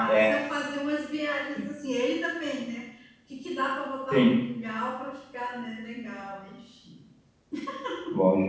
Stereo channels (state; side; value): identical; both; correlation 1.00